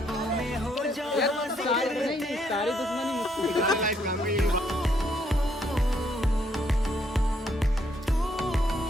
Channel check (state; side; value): normal; both; correlation 0.71